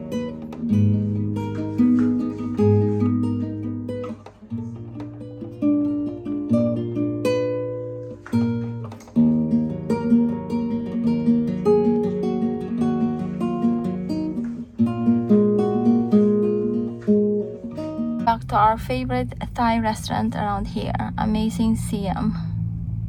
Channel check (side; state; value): both; identical; correlation 1.00